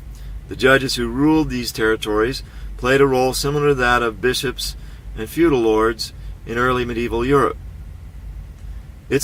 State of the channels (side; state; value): both; identical; correlation 1.00